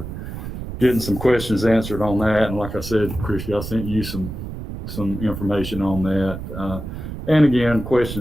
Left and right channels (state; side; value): noise; right; rumble, 8 dB below the sound